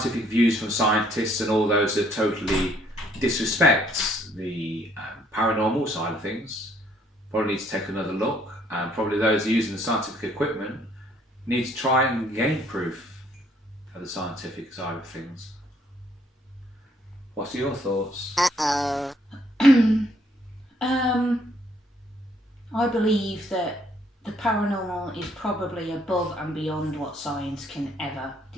views from scientists and all those that totally disrespect the paranormal side of things probably need to take another look, and probably those using the scientific equipment need to try and gain proof of the scientific side of things. What are your thoughts? I believe that the paranormal is probably above and beyond what science can ever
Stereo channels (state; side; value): normal; both; correlation 0.65